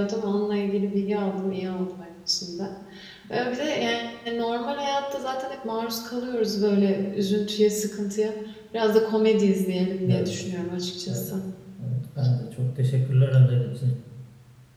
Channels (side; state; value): both; identical; correlation 1.00